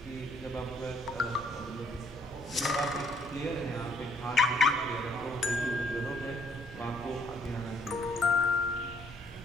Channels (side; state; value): both; normal; correlation 0.66